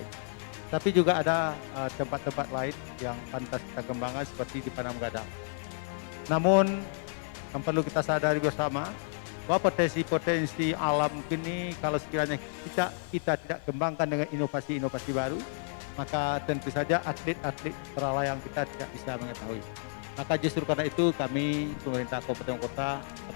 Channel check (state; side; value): silent; right; 57 dB below the other